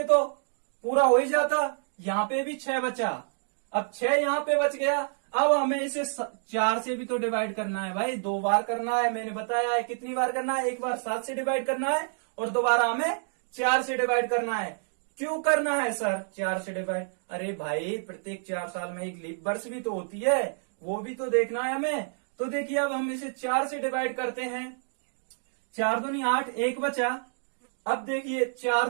तो पूरा हो ही जाता, यहाँ पे भी 6 बचा, अब 6 यहाँ पे बच गया। अब हमें इसे 4 से भी तो डिवाइड करना है भाई, 2 बार करना है, मैंने बताया है कितनी बार करना है, एक बार 7 से डिवाइड करना है और दोबारा हमें 4 से डिवाइड करना है। क्यों करना है सर 4 से डिवाइड, अरे भाई प्रत्येक 4 साल में एक लीप वर्ष भी तो होती है, वो भी तो देखना है हमें। तो देखिए अब हम इसे 4 से डिवाइड करते हैं, 4 दूनी 8, एक बचा। अब देखिए 4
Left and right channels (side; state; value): left; silent; digital silence